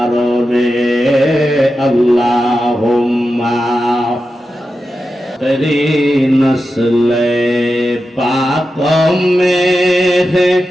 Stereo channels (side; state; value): both; normal; correlation 0.91